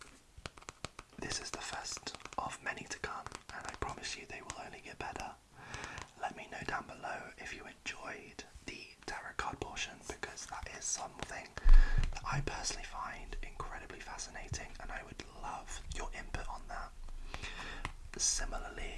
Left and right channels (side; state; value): both; identical; correlation 1.00